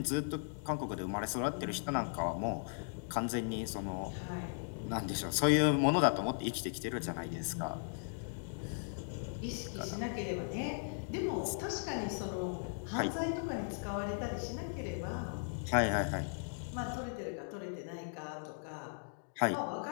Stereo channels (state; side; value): silent; right; digital silence